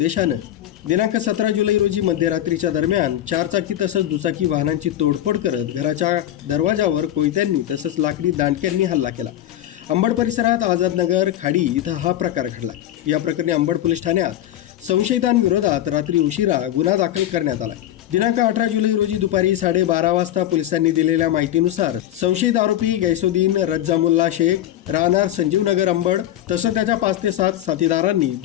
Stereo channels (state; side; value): quieter; right; 12.5 dB